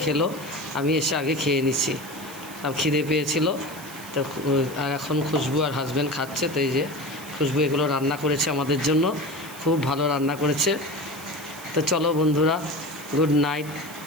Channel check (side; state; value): right; noise; hiss, 16 dB below the sound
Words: খেলো, আমি এসে আগে খেয়ে নিচ্ছি, আর খিদে পেয়েছিল। তো আর এখন খুশবু আর হাজব্যান্ড খাচ্ছে। তো এই যে খুশবু এগুলো রান্না করেছে আমাদের জন্য, খুব ভালো রান্না করেছে। তো চলো বন্ধুরা, গুড নাইট।